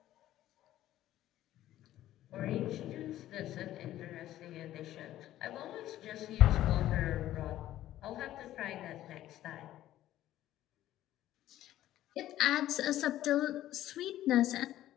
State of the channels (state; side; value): quieter; right; 13.6 dB